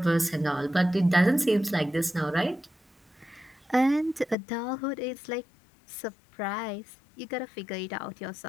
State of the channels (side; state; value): right; drops out; at 4.4 s